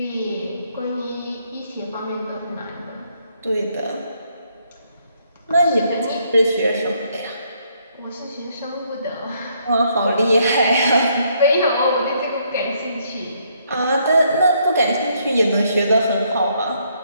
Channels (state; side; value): inverted; both; correlation -0.71